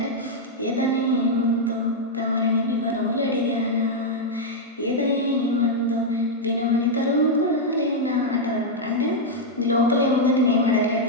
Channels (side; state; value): both; normal; correlation -0.02